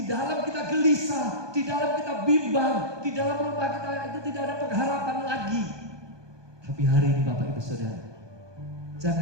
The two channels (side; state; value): left; late; 1.2 ms